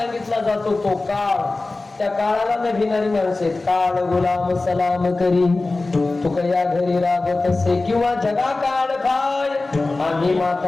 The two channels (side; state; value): right; quieter; 3.3 dB